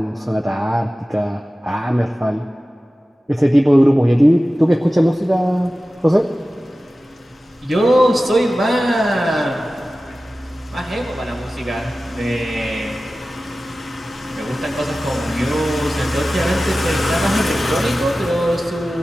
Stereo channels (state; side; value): normal; both; correlation 0.96